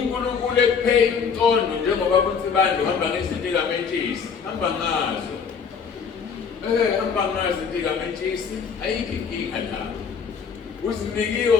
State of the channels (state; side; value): quieter; right; 6.2 dB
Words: ekuphe intondo njengoba kuthi bantu hamba ngezinto kaMentshisi hamba ngazo hamba ngazo izinto kaMentshisi ayikho inkinga la